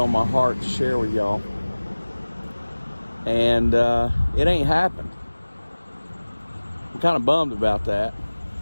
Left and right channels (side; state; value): both; inverted; correlation -1.00